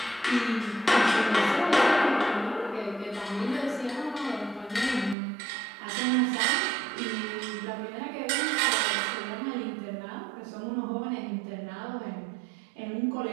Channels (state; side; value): drops out; left; at 5.2 s